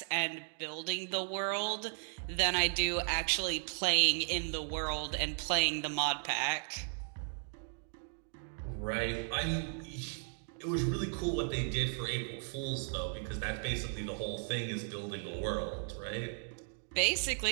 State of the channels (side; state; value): left; silent; 54 dB below the other